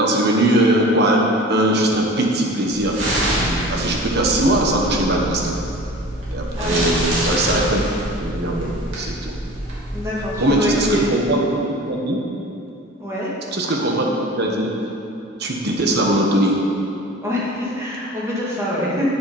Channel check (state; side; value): normal; both; correlation 0.40